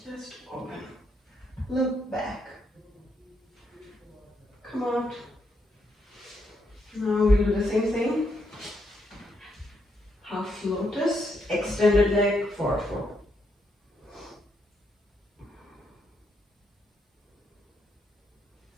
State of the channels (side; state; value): both; normal; correlation 0.78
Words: open. Look back. Come out. Now we'll do the same thing. Half lotus, extended leg, forward fold.